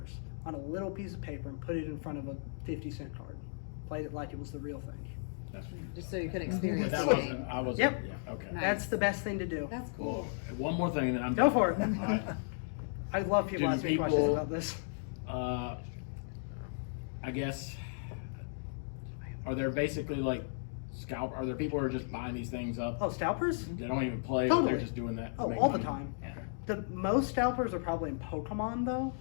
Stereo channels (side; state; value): right; silent; digital silence